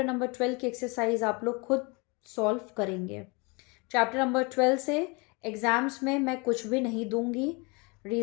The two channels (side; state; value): right; quieter; 29.2 dB